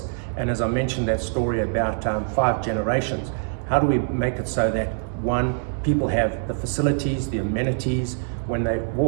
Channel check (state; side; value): silent; left; 63 dB below the other